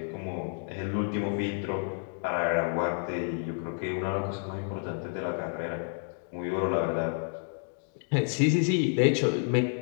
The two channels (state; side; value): silent; right; 58 dB below the other